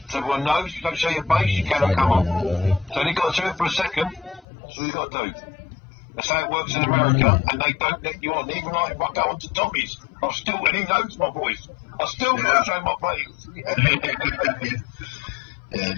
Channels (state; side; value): drops out; right; at 4.4 s